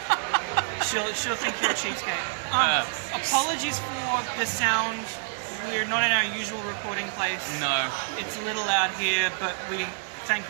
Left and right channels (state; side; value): silent; left; digital silence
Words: she'll think you're a cheapskate. Apologies for the sound. We're not in our usual recording place. No. It's a little loud here, but we thank